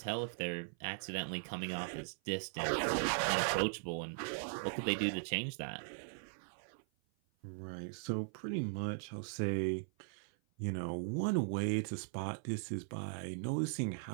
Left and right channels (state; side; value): silent; left; 52 dB below the other